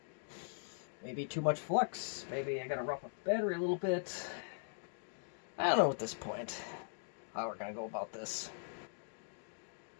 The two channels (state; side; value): silent; right; digital silence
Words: Maybe too much flux. Maybe I gotta rough up the battery a little bit. I don't know at this point how we're gonna go about this.